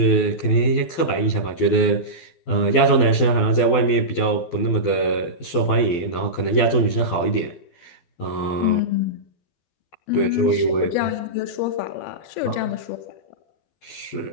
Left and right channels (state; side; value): late; right; 12 ms